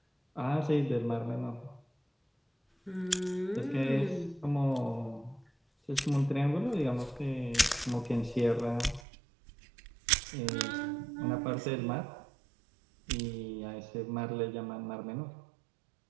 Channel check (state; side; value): drops out; left; at 9.1 s